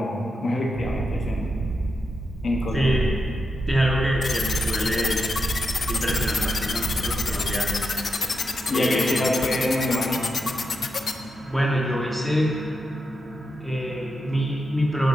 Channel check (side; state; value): both; normal; correlation 0.86